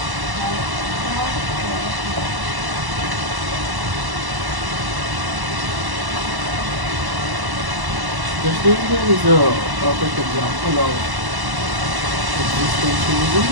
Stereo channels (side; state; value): left; late; 1.1 ms